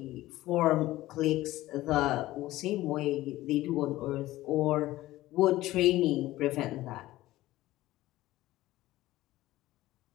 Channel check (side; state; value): right; quieter; 16.5 dB